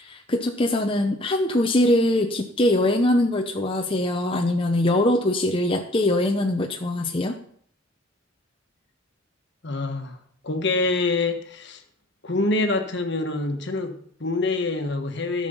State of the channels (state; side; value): normal; both; correlation 0.53